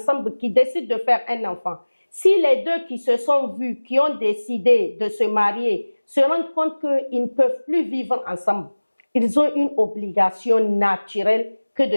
qui décident de faire un enfant. Si les deux qui se sont vus, qui ont décidé de se marier, se rendent compte qu'ils ne peuvent plus vivre ensemble, ils ont une obligation naturelle que de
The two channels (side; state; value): both; inverted; correlation -1.00